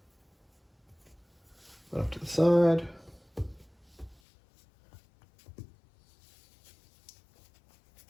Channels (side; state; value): right; drops out; at 4.2 s